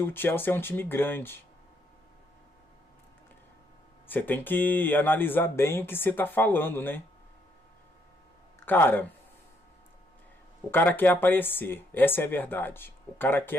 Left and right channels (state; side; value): normal; both; correlation 0.73